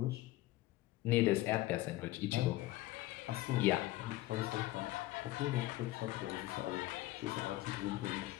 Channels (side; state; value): right; quieter; 17.2 dB